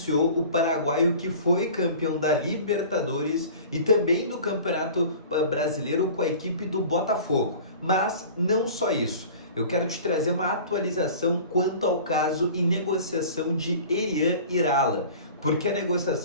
o paraguaio que foi campeão da Libertadores e também do Campeonato Brasileiro com a equipe do Botafogo. Mas não só isso. Eu quero te trazer uma atualização quanto ao caso e negociação de Elian Irala, porque a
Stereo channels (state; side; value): inverted; both; correlation -0.42